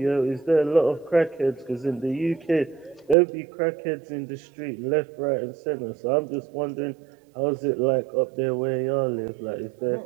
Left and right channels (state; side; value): drops out; left; at 3.2 s